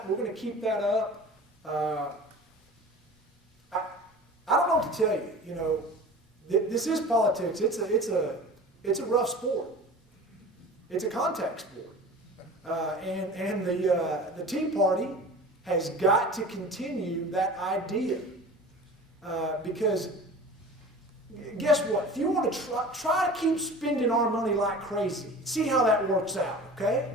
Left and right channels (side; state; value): both; normal; correlation 0.39